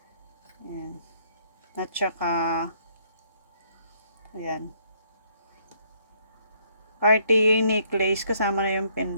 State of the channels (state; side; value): inverted; both; correlation -0.68